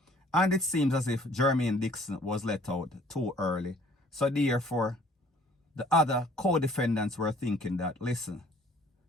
And it seems as if Jermaine Dixon was let out too early. So therefore, the other co-defendants were thinking that, listen,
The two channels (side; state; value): both; normal; correlation 0.56